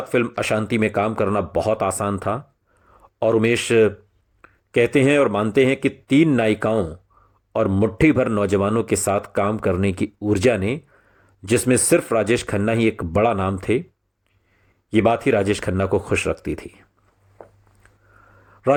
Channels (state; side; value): identical; both; correlation 1.00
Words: फिल्म अशांति में काम करना बहुत आसान था और उमेश कहते हैं और मानते हैं कि तीन नायिकाओं और मुट्ठी भर नौजवानों के साथ काम करने की ऊर्जा ने, जिसमें सिर्फ राजेश खन्ना ही एक बड़ा नाम थे, ये बात ही राजेश खन्ना को खुश रखती थी।